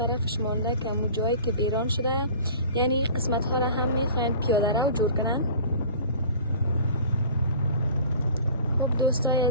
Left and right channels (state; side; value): inverted; both; correlation -0.43